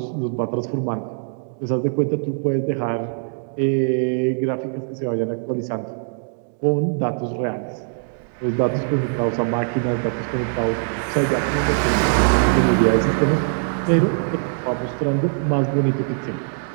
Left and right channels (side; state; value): left; silent; 64 dB below the other